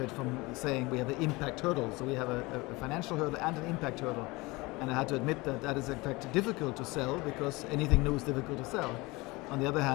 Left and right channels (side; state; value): right; quieter; 23.3 dB